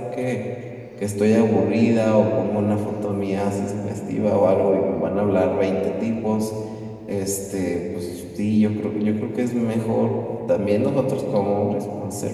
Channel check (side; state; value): both; identical; correlation 1.00